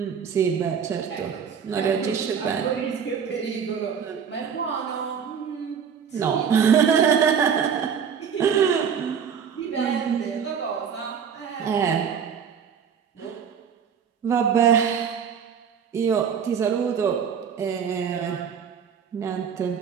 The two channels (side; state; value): left; quieter; 7.3 dB